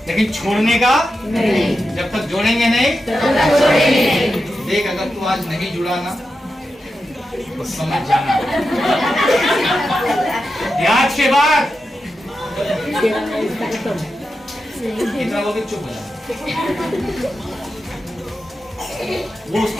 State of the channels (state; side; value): normal; both; correlation 0.89